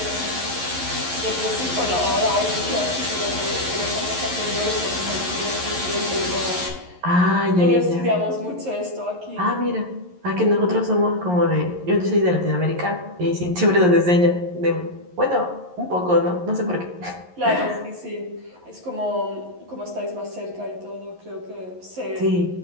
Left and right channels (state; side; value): late; left; 11 ms